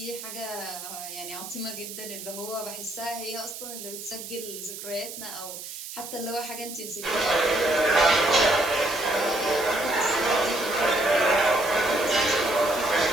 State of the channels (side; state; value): right; noise; hiss, 10 dB below the sound